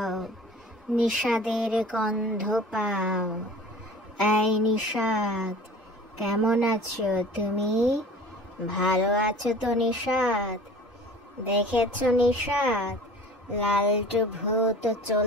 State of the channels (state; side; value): normal; both; correlation 0.43